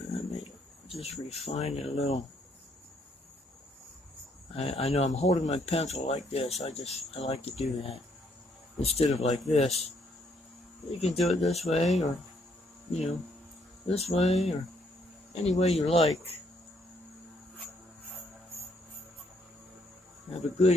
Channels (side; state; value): both; normal; correlation 0.70